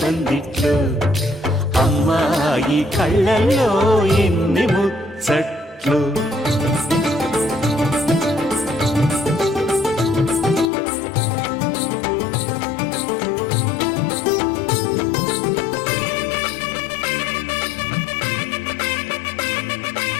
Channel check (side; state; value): right; drops out; at 10.7 s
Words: పందిట్లో అమ్మాయి కళ్ళల్లో ఎన్ని ముచ్చట్లు